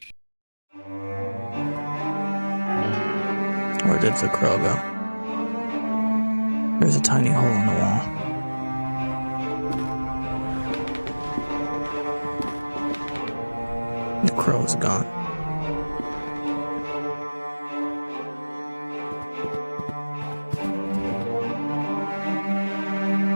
Where did the crow go? There's a tiny hole in the wall. The crow is gone.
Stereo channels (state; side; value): inverted; both; correlation -1.00